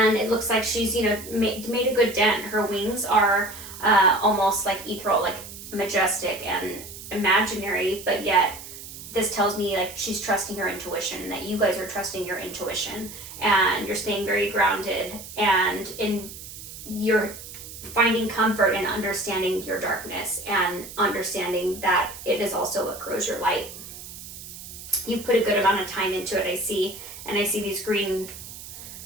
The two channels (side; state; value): right; noise; hiss, 13 dB below the sound